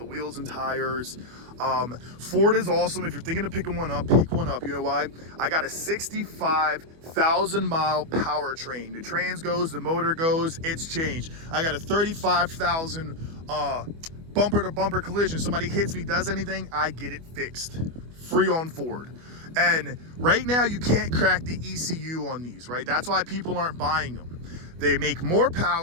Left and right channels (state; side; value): late; left; 25 ms